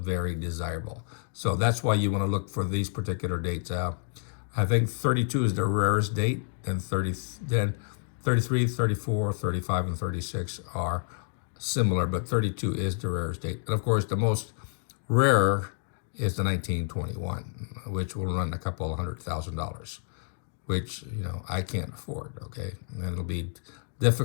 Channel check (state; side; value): silent; right; digital silence